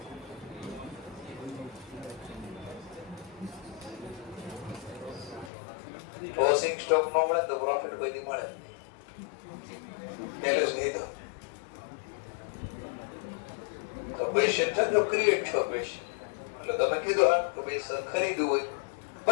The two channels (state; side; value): drops out; right; at 5.5 s